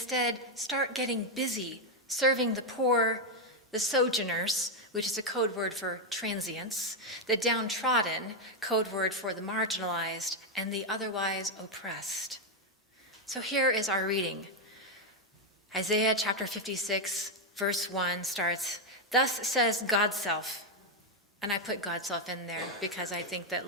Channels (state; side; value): normal; both; correlation 0.03